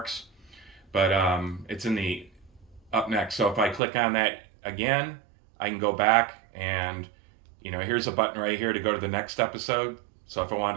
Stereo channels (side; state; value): left; drops out; at 3.8 s